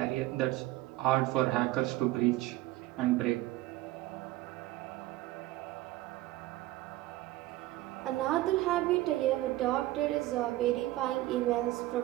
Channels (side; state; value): left; quieter; 16.9 dB